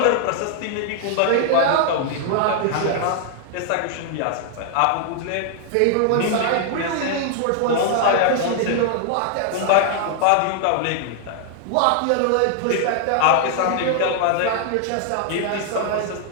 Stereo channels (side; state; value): both; different; correlation 0.00